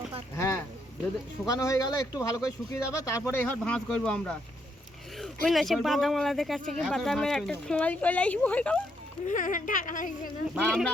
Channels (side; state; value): both; normal; correlation 0.75